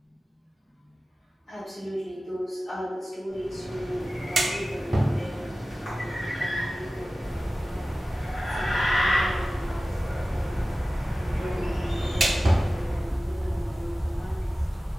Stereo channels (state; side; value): normal; both; correlation 0.96